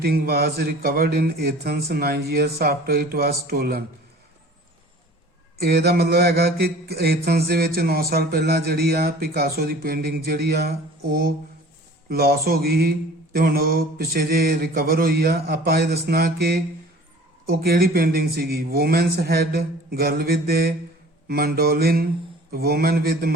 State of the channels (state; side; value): normal; both; correlation 0.46